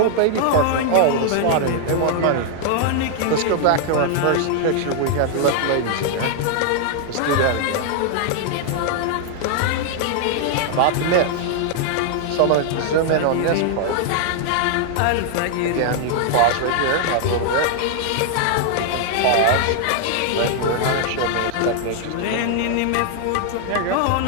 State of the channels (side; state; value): both; different; correlation 0.00